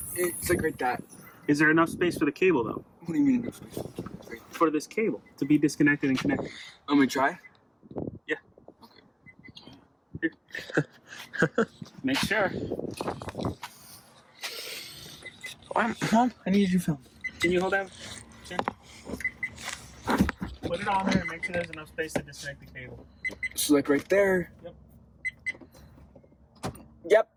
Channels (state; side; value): identical; both; correlation 1.00